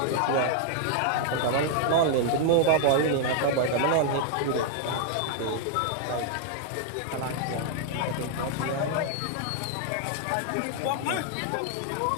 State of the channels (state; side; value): different; both; correlation 0.00